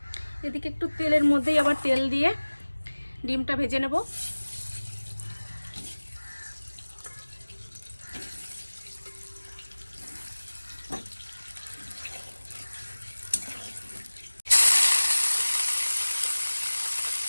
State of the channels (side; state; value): both; inverted; correlation -1.00